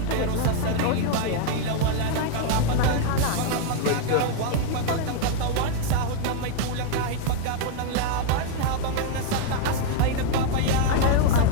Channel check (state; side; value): different; both; correlation 0.00